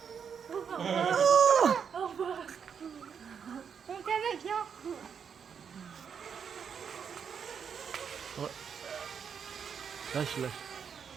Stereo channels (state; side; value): quieter; left; 7.1 dB